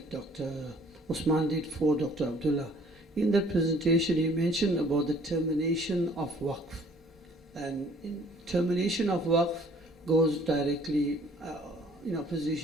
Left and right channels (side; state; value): both; normal; correlation 0.56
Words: Dr. Usman did for Dr. Abdullah. In that presentation, he mentioned about the termination of Waqf. And in termination of Waqf goes directly in